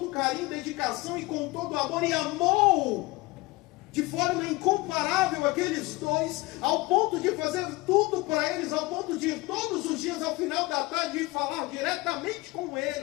carinho, dedicação e com todo amor, e amou de forma incomparável aqueles dois, ao ponto de fazer tudo para eles, ao ponto de ir todos os dias ao final da tarde e falar diretamente com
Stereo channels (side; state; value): right; quieter; 21.9 dB